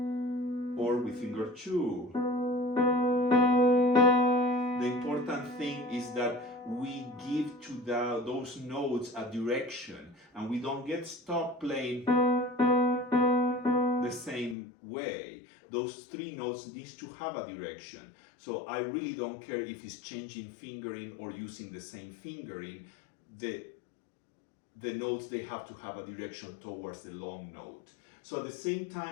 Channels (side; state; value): right; drops out; at 14.6 s